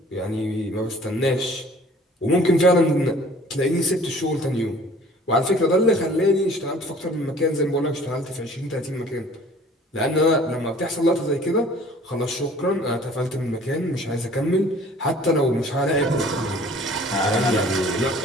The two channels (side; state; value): both; normal; correlation 0.51